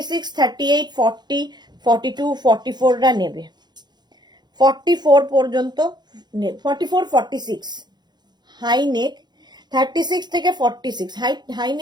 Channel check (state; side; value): late; left; 0.21 ms